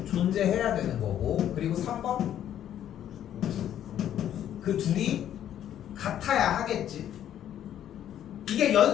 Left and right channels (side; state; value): right; quieter; 10.8 dB